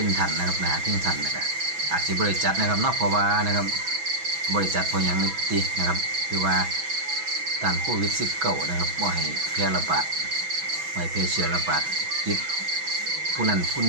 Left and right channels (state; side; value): late; left; 6.1 ms